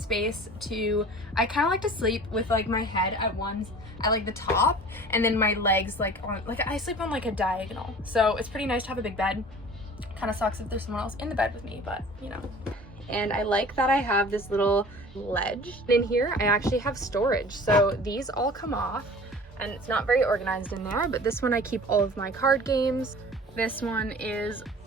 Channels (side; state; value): both; normal; correlation 0.43